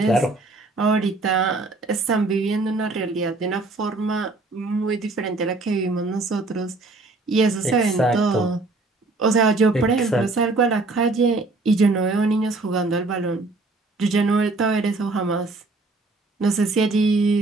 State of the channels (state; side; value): quieter; left; 3.2 dB